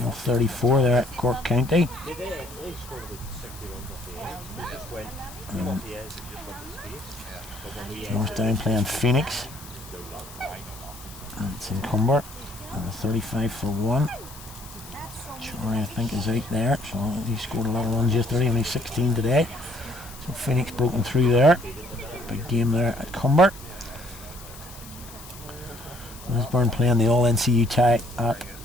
there at Cork County. Northdown playing Phoenix. And it's in Cumber. And 35 for 1. Shorey, I think, is out there. So he scored a lot of runs yesterday, only 16 today. So Phoenix broken through there. Big game there at Cumber. Lisburn playing the All NCU tie at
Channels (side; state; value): left; noise; hiss, 17 dB below the sound